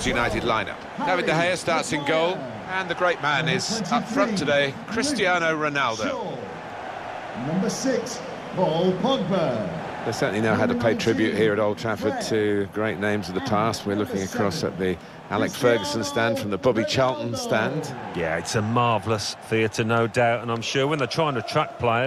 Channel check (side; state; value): both; identical; correlation 1.00